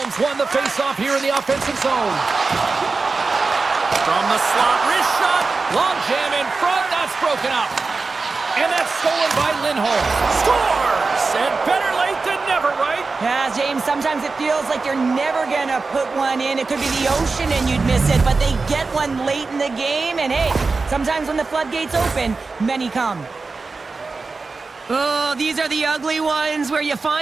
won the faceoff here in the offensive zone. From the slot, wrist shot, long jam in front, that's broken up. And that's stolen by Lindholm. Scores! And better late than never, right? Yeah, James, sometimes it feels like you're never going to put one in. It could be the ocean and you'd miss it, but they get one late in the game. And hey, sometimes when the floodgates open, many come. Oh, these are the ugly ones where you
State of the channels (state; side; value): quieter; left; 4.1 dB